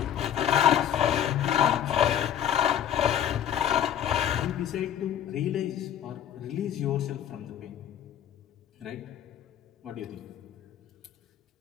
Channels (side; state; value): right; quieter; 10.1 dB